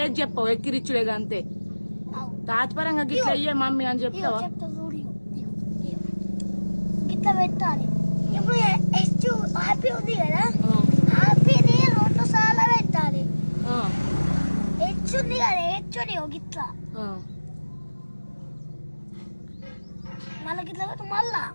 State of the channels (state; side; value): inverted; both; correlation -1.00